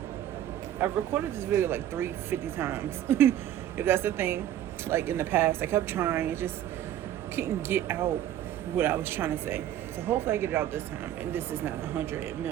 I've recorded this video like 350 times. If that's the thing, like in the past, I kept trying, just couldn't get out what I was trying to say. So hopefully I get it out this time, and this is not 100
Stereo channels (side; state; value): left; quieter; 11.7 dB